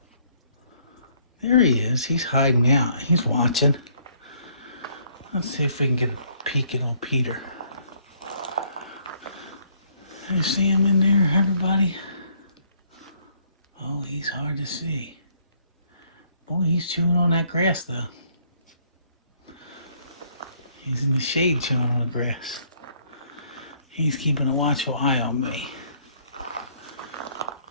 There he is. He's hiding out. He's watching. Let's see if we can get a peek at old Peter. You see him in there, everybody? Oh, he's hard to see. Boy, he's chewing on that grass, though. He's in the shade chewing on the grass. He's keeping a watchful eye on me.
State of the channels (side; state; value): both; inverted; correlation -0.65